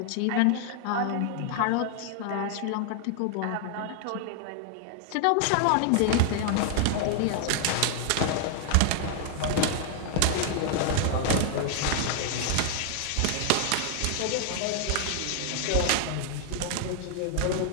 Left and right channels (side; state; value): both; different; correlation 0.00